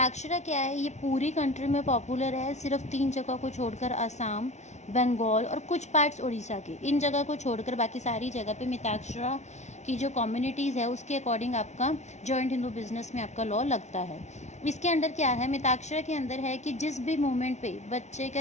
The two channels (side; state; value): right; late; 0.33 ms